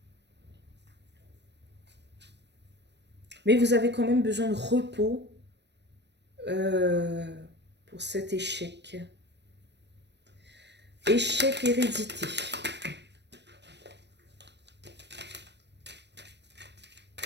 Mais vous avez quand même besoin de repos euh, pour cet échec. Échec hérédité.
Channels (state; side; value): late; left; 0.50 ms